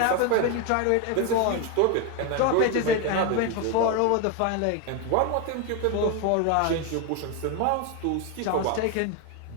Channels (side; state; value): both; different; correlation 0.02